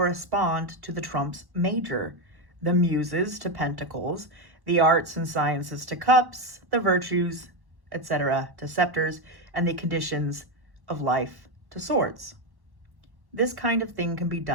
to the trumps major, the muses to pentacles, the arts and sciences to cups, the virtues, etc., to scepters, and the conditions of life to swords. This kind of thing can be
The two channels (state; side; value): late; left; 1.1 ms